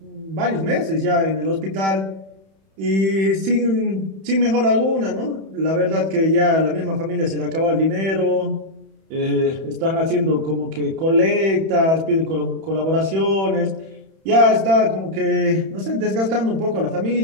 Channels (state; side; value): late; left; 31 ms